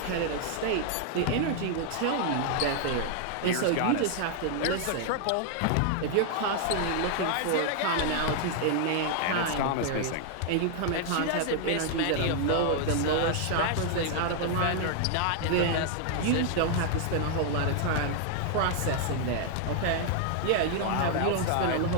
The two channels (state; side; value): different; both; correlation 0.00